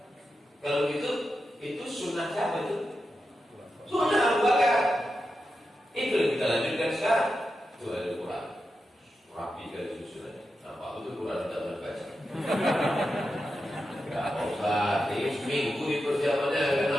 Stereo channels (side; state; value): both; normal; correlation 0.89